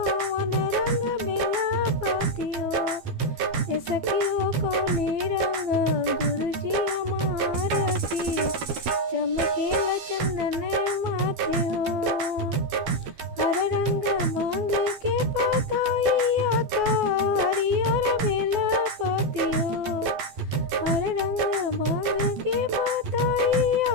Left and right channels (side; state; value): left; late; 12 ms